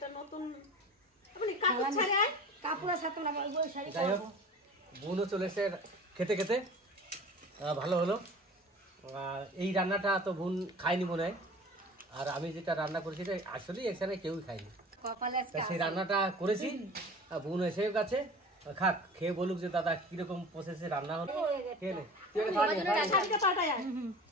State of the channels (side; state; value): both; normal; correlation 0.40